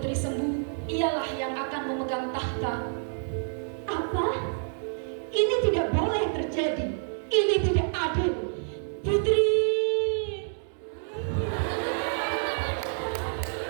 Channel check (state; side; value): silent; left; digital silence